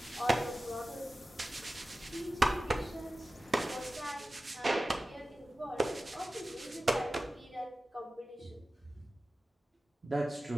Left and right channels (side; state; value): both; normal; correlation 0.95